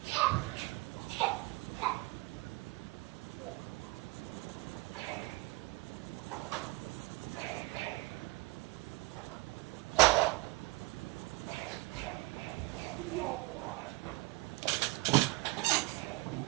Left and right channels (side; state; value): left; quieter; 22.7 dB